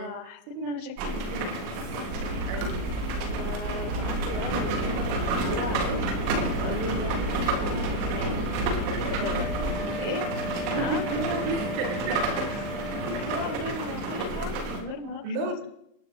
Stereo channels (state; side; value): late; left; 39 ms